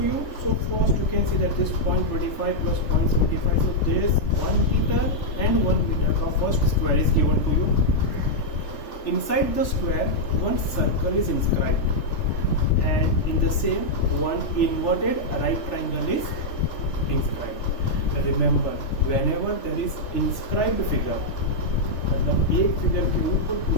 you. So first you can see that this 0.25 plus 0.75. So this 1 meter and 1 meter. The first square is given to you. Inside the square, one circle is inscribed, and in the same one inverted right triangle is inscribed. Remember, whenever there is inscribed figure, मतलब एक फिगर के ऊपर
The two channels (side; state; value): right; late; 3.4 ms